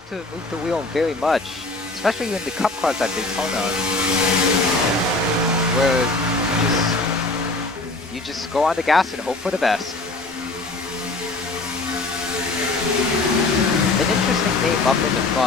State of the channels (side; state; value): right; quieter; 3.1 dB